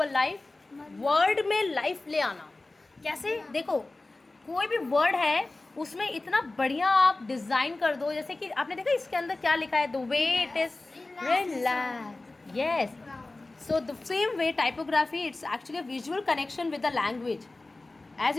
life? Word में लाइफ ले आना. कैसे? देखो कोई भी वर्ड है उसमें इतना बढ़िया आप डिज़ाइन कर दो. जैसे कि आपने देखा इसके अंदर क्या लिखा है, the way it is relax. Yes, so the same way typography, it's actually a visual connection with the language. As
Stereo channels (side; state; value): right; quieter; 3.1 dB